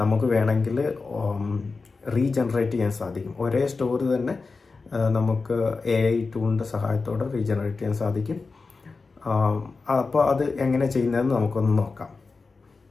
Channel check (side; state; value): right; quieter; 4.2 dB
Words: നമുക്ക് വേണമെങ്കിൽ റീജനറേറ്റ് ചെയ്യാൻ സാധിക്കും. ഒരേ സ്റ്റോറി തന്നെ നമുക്ക് AI ടൂളിൻ്റെ സഹായത്തോടെ റീജനറേറ്റ് ചെയ്യാൻ സാധിക്കും. അപ്പോൾ അത് എങ്ങനെ ചെയ്യുന്നതെന്ന് നമുക്കൊന്ന് നോക്കാം.